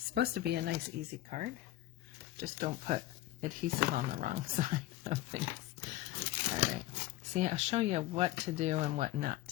supposed to be a nice, easy card. Just don't put adhesive on the wrong side of things. All right. See, I show you what to do and what not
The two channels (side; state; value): right; quieter; 15.6 dB